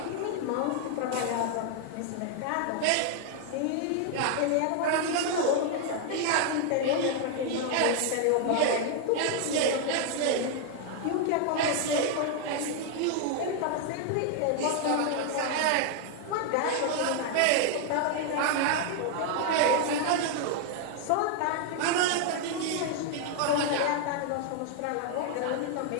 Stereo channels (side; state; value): both; different; correlation 0.00